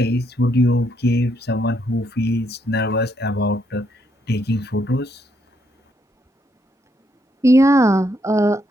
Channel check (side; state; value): both; normal; correlation 0.75